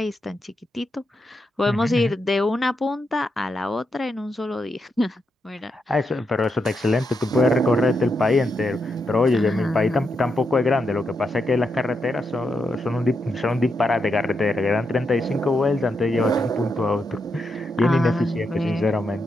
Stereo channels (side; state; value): both; normal; correlation 0.83